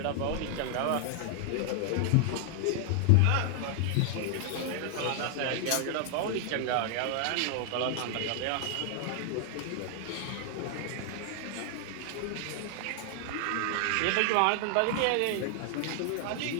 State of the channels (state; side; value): different; both; correlation 0.00